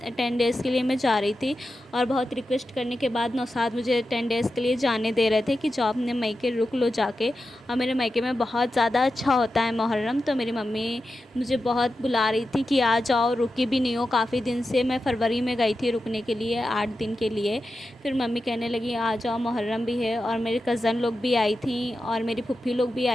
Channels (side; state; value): both; normal; correlation 0.91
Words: 10 डेज़ के लिए मैं जा रही थी और बहुत रिक्वेस्ट करने के बाद नौसाद मुझे 10 डेज़ के लिए जाने दे रहे थे कि जाओ अपने मायके रुक लो जाके। और मेरे मायके में बहुत ज़्यादा अच्छा होता है मुहर्रम, तो मेरी मम्मी मुझे बहुत बुला रही थी कि आ जाओ, रुकी भी नहीं हो काफ़ी दिन से। मैं फरवरी में गई थी रुकने के लिए 8 दिन के लिए। फिर मम्मी कहने लगी आ जाओ, मुहर्रम भी है। और मेरे कज़न लोग भी आई थी और मेरी फूफी लोग भी